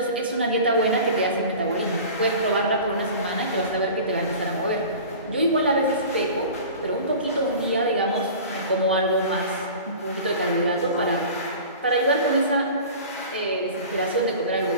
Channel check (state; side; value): inverted; both; correlation -0.39